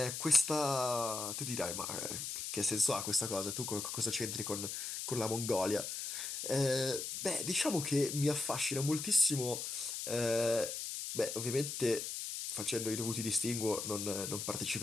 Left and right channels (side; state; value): left; noise; hiss, 4 dB below the sound